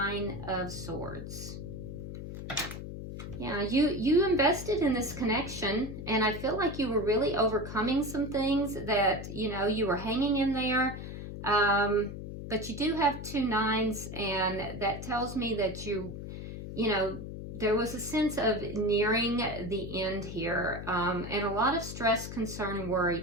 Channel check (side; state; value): left; noise; hum, 8 dB below the sound